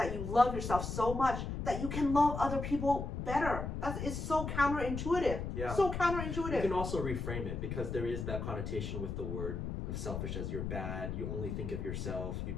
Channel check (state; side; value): noise; left; rumble, 4 dB below the sound